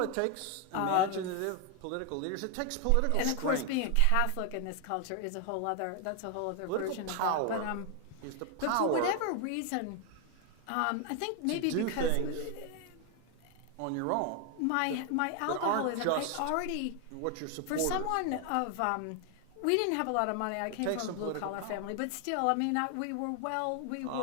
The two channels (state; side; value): different; both; correlation 0.01